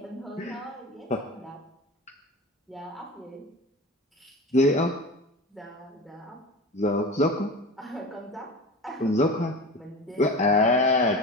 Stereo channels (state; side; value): normal; both; correlation 0.31